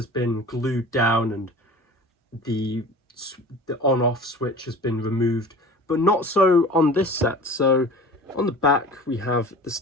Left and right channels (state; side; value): normal; both; correlation 0.40